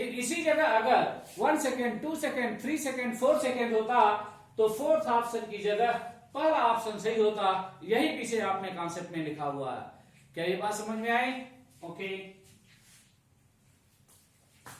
इसी जगह अगर 1 सेकेंड, 2 सेकेंड, 3 सेकेंड, 4 सेकेंड होता तो फोर्थ ऑप्शन की जगह पहला ऑप्शन सही होता। यही पीछे आपने कॉन्सेप्ट में लिखा हुआ है। क्या ये बात समझ में आई? ओके।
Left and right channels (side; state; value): both; identical; correlation 1.00